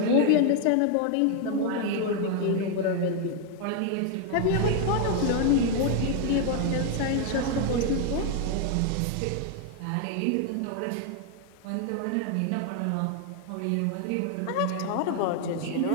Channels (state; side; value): different; both; correlation 0.00